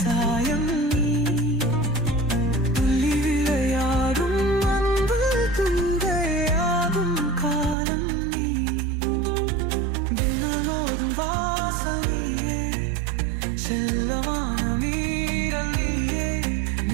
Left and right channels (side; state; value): left; drops out; at 7.8 s